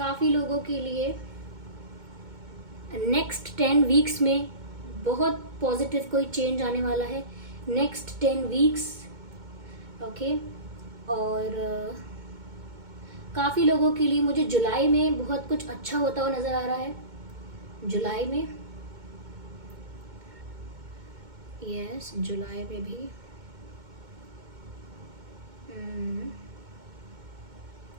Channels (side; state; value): left; late; 2.2 ms